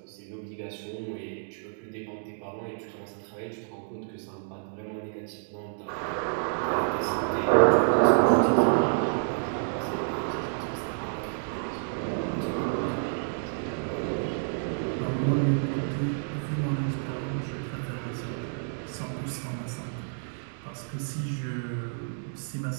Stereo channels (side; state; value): left; silent; digital silence